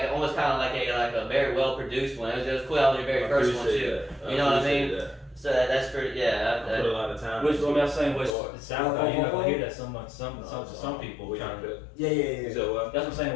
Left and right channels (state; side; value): drops out; right; at 8.3 s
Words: almost kind of like a very well produced one. It was cool. That was your very first one too. You know what I mean? That. So that's pretty. Yeah. I put a lot of time. Which I'm not saying which it sounds like you're not gonna hear that some people trying to. Yeah. So That's what I'm saying.